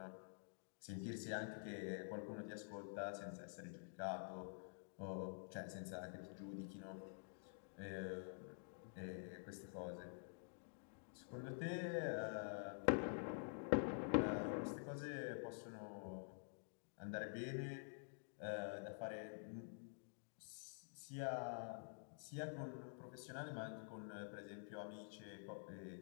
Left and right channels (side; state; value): right; silent; digital silence